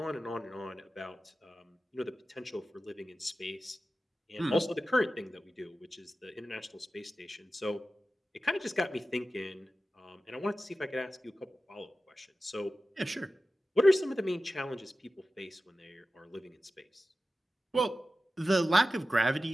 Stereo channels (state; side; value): normal; both; correlation 0.94